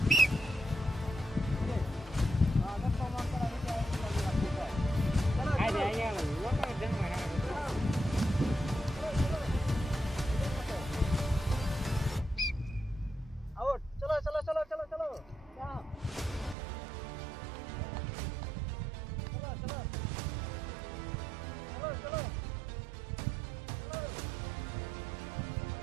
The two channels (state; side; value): drops out; left; at 16.6 s